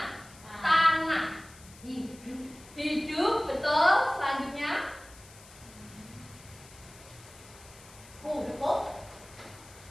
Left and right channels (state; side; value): noise; left; hiss, 21 dB below the sound